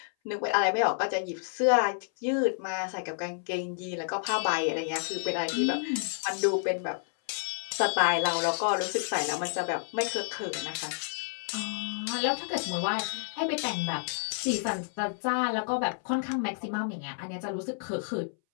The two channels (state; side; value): silent; right; 58 dB below the other